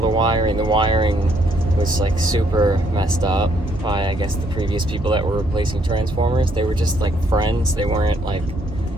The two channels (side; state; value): both; normal; correlation 0.70